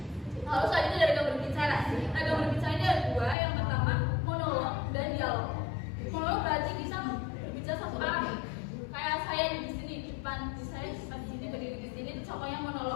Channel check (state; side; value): drops out; right; at 3.4 s